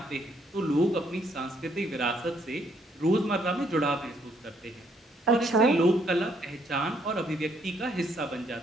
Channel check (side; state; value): both; normal; correlation 0.70